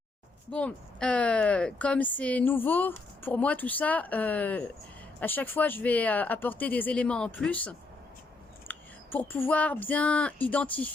Bon, comme c'est nouveau, pour moi tout ça, à chaque fois je vais apporter des éléments en plus, pour pouvoir bien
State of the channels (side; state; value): right; quieter; 3.4 dB